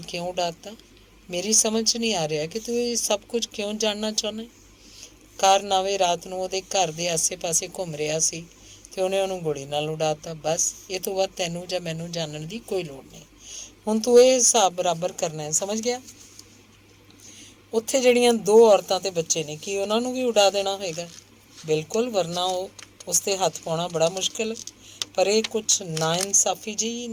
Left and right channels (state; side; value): identical; both; correlation 1.00